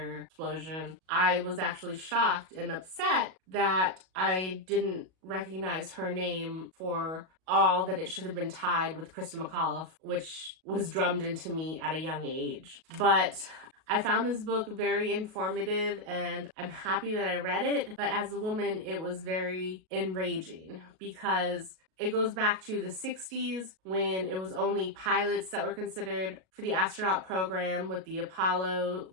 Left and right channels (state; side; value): late; left; 37 ms